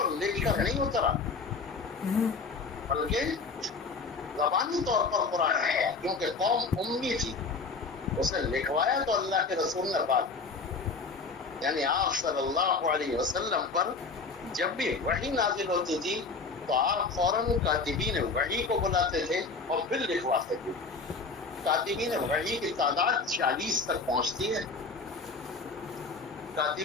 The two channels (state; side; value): quieter; right; 4.3 dB